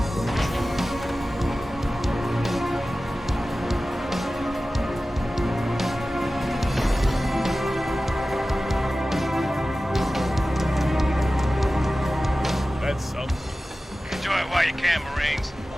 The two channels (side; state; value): both; normal; correlation 0.95